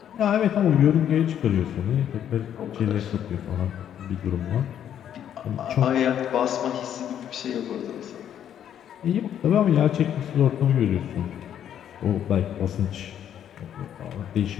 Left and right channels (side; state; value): right; quieter; 9.9 dB